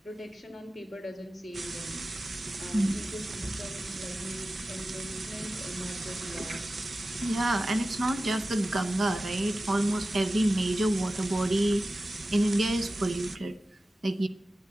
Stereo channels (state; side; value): normal; both; correlation 0.94